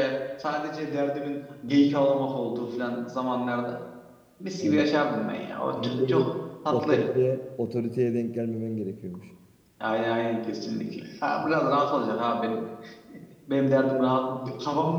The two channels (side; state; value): both; identical; correlation 1.00